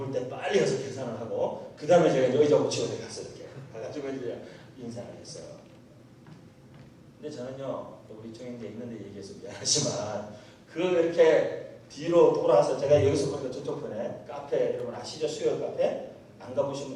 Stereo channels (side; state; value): both; identical; correlation 1.00